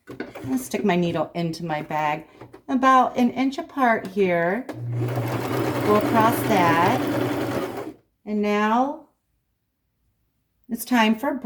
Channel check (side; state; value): both; identical; correlation 1.00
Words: and stick my needle into my bag. About an inch apart here. Go across that. And now it's time for a